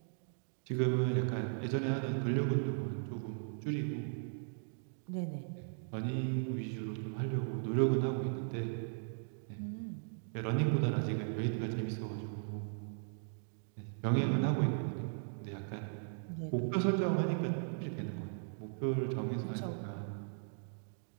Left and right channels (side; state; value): left; silent; digital silence